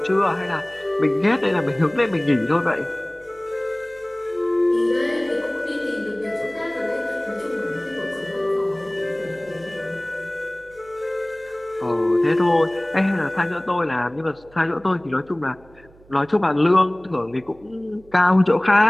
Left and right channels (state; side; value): noise; right; hum, 26 dB below the sound